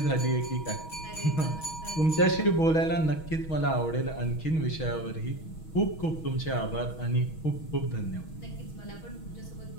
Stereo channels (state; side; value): late; right; 6.3 ms